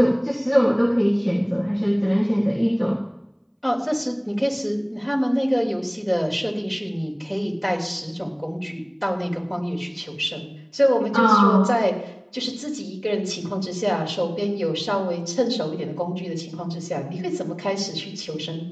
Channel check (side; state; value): both; identical; correlation 1.00